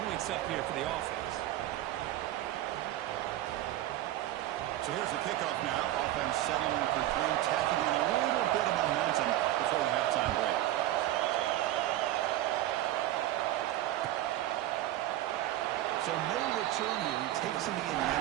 points up here for the offense. So here's the kickoff now. Offense settling in for 3, tacking on a little bit of momentum before the halftime break. So no return here. He takes him in the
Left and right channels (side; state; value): left; quieter; 14.3 dB